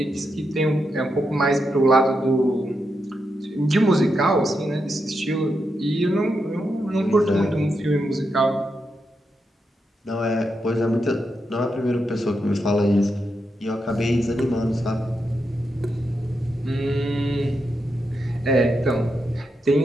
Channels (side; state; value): both; normal; correlation 0.84